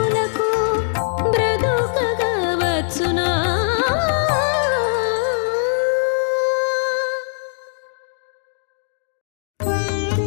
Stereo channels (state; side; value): silent; right; digital silence